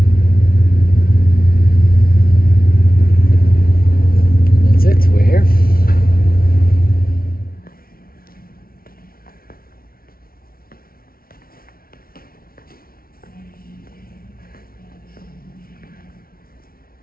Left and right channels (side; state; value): right; late; 0.43 ms